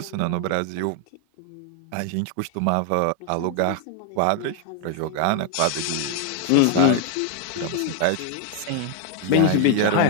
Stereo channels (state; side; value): different; both; correlation 0.00